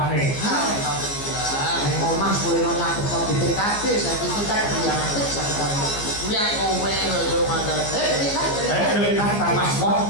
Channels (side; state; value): right; late; 15 ms